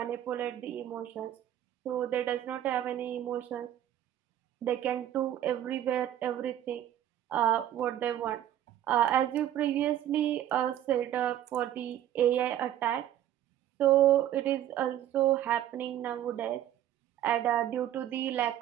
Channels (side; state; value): left; quieter; 11.8 dB